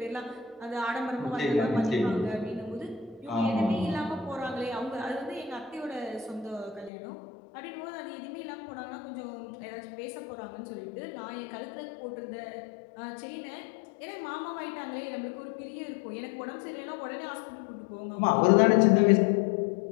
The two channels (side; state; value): right; drops out; at 6.9 s